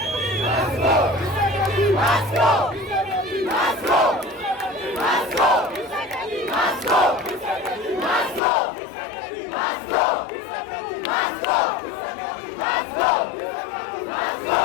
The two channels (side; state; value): right; drops out; at 8.4 s